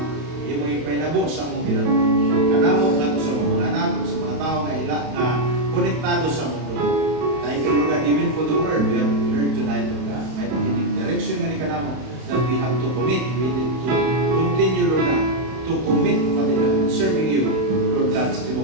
imong ipainabo sa mong bilang. Kanamo nga to sa mga anak, sa mga tao nga konektado sa mundo. Thank you, Lord God, even for the word. We have heard line, Lord God. May pagkinig direction nga ni kanamo that we have to commit. We need to continue, Lord God, to commit, Father God, serving you, Lord God, sa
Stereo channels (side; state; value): left; late; 31 ms